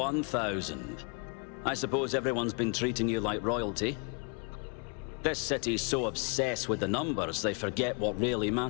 I suppose everyone's been treating you like royalty. This city's so obsessed with the numbers they forget what really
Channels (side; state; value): right; quieter; 36.4 dB